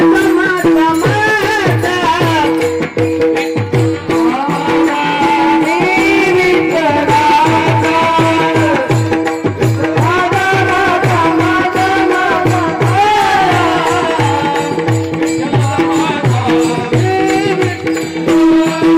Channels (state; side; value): identical; both; correlation 1.00